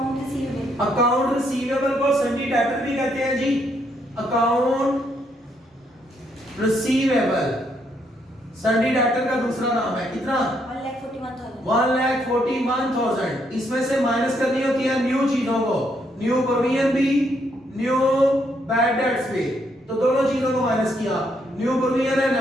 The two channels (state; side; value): normal; both; correlation 0.74